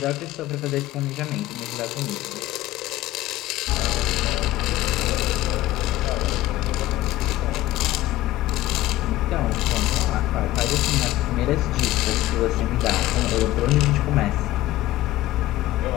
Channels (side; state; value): right; quieter; 15.8 dB